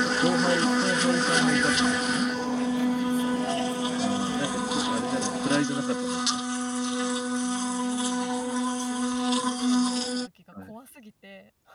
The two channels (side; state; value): both; identical; correlation 1.00